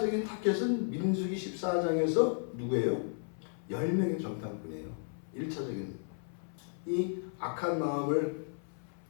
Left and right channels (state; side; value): silent; right; 55 dB below the other